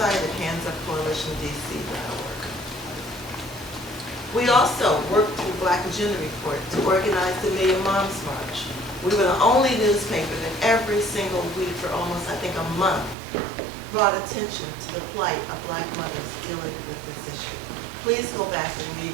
at handsupcoalitiondc.org. We also worked through Black Agenda Report to organize the Million Moms March. We were the only newspaper that every single week for almost, I think, a month, brought attention to the plight of Black mothers dealing with this issue. Please go back and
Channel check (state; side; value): drops out; left; at 13.2 s